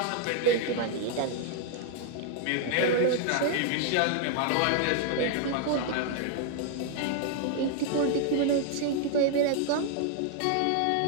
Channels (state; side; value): different; both; correlation 0.00